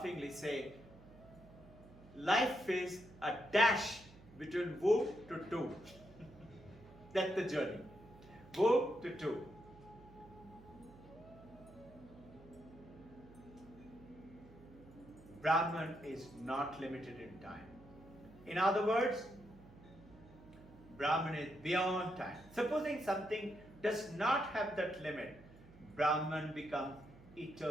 say, life is a dash between womb to tomb. That's the journey. Womb to tomb. Brahman is not limited in time. In other words, Brahman is beyond time. Supposing something does not have that limit, Brahman becomes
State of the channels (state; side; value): noise; right; hum, 21 dB below the sound